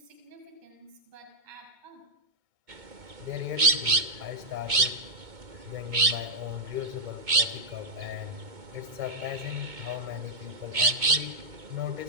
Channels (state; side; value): late; left; 2.2 ms